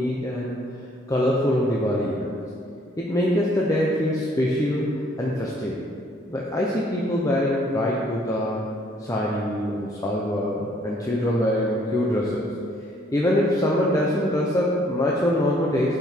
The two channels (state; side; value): normal; both; correlation 0.63